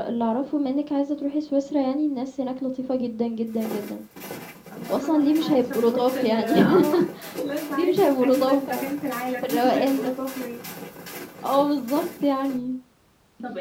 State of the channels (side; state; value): both; identical; correlation 1.00